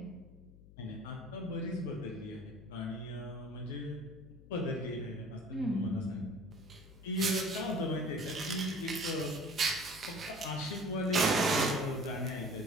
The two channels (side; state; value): left; noise; hum, 20 dB below the sound